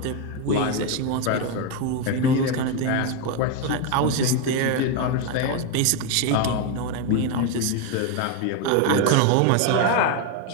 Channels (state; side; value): different; both; correlation 0.01